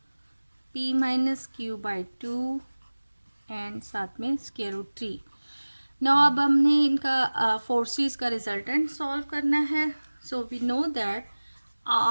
p minus Q by 2 and साथ में स्क्वायर रूट 3। नाउ अब हमने इनका फोर्सेस का रिजल्टेंट सॉल्व करना है। So we know that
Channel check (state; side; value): inverted; both; correlation -1.00